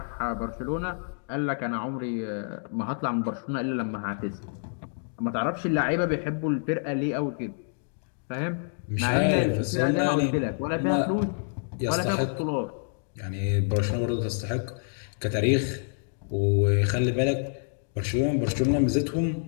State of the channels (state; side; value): silent; right; digital silence